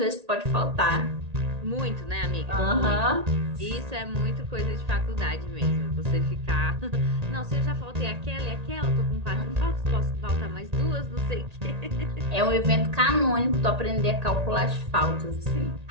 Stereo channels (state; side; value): late; left; 1.8 ms